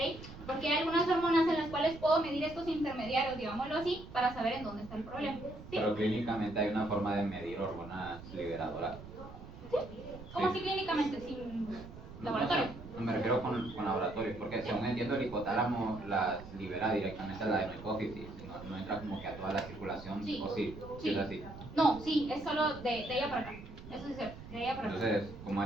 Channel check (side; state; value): right; noise; rumble, 14 dB below the sound